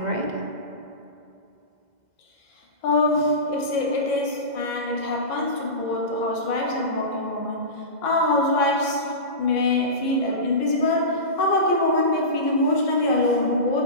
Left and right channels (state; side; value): late; left; 2.0 ms